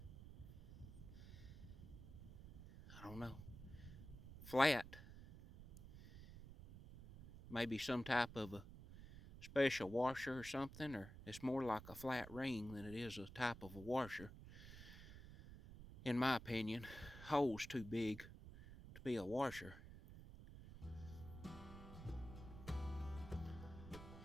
I don't know. Flat. Maybe some type of a special washer or something, or it's more like a flat ring than it is a type of a washer. In my opinion, hole's too big to be a washer.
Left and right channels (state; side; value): noise; right; rumble, 13 dB below the sound